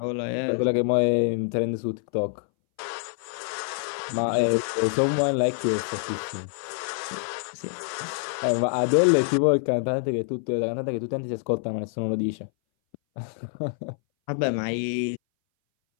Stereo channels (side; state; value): right; silent; 60 dB below the other